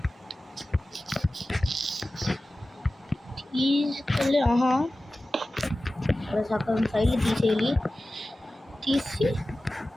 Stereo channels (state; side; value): normal; both; correlation 0.96